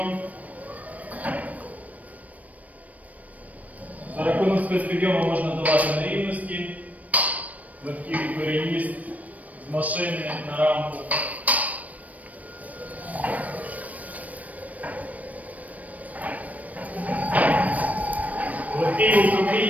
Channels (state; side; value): late; left; 0.071 ms